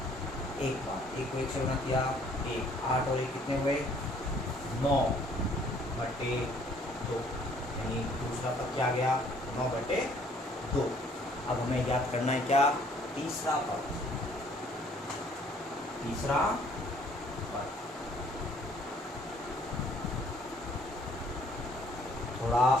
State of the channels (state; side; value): normal; both; correlation 0.60